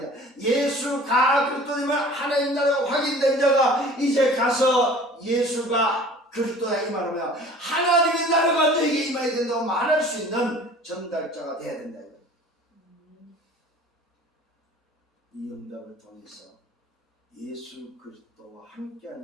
예수가 그리스도 이 말 하나님 나라가 확인된 자가 이제 가서 예수가 그리스도야 이 말하면 하나님의 나라가 너에게 임해야 된다고 말할 수 있는 전달자가 돼야 된다. 이 응답을 통해서 예수 그리스도와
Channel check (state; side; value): normal; both; correlation 0.46